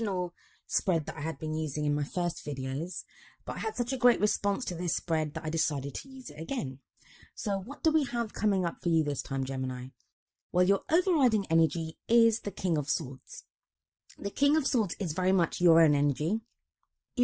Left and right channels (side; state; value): both; identical; correlation 1.00